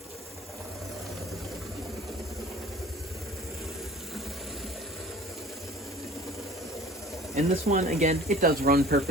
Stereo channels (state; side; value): normal; both; correlation 0.46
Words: And this one, again, it does run